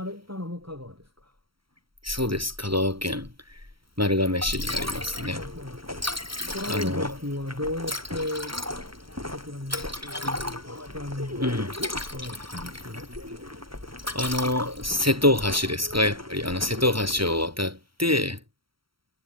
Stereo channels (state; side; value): late; left; 0.74 ms